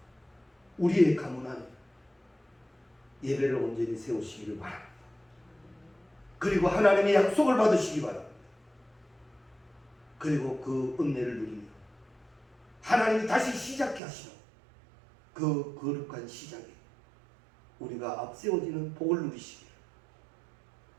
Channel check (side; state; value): left; drops out; at 14.0 s